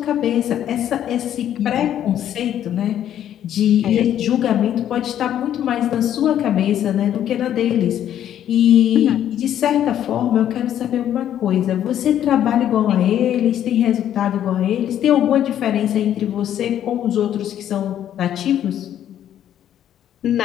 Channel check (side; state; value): right; quieter; 10.7 dB